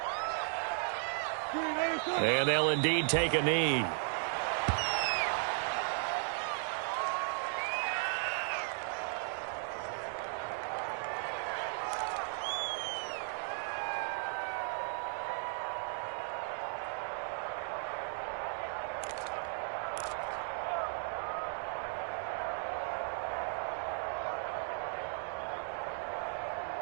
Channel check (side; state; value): left; silent; 54 dB below the other